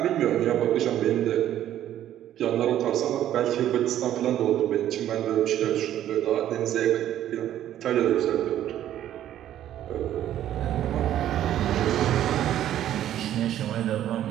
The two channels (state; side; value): quieter; left; 11.8 dB